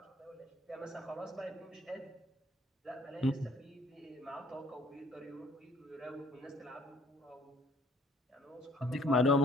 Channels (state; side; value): normal; both; correlation 0.59